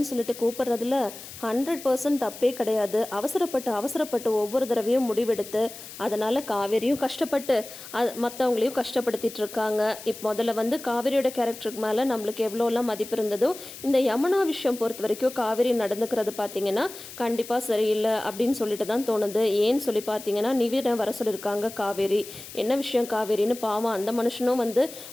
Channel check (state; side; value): noise; left; hiss, 14 dB below the sound